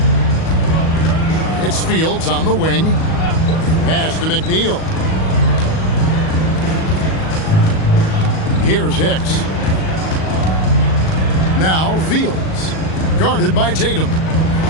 It's Fields on the wing. Pass to McNeil. Here's Hicks. Now Fields. Guarded by Tatum.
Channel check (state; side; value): late; right; 38 ms